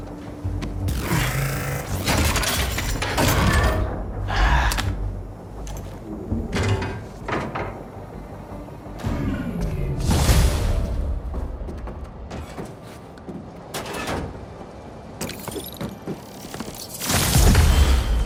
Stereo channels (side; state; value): both; identical; correlation 1.00